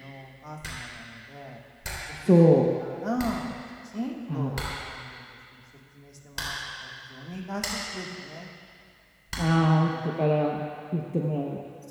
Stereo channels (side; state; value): both; identical; correlation 1.00